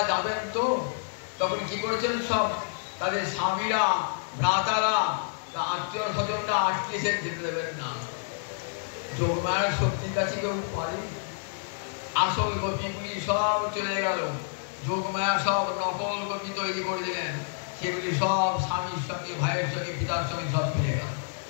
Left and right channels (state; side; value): silent; right; digital silence